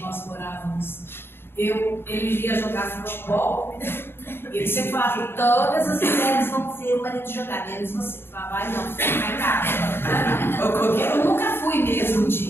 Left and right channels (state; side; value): late; right; 0.11 ms